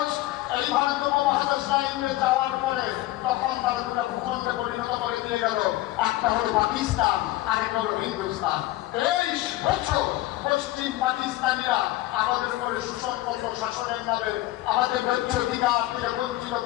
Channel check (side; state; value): right; quieter; 17.0 dB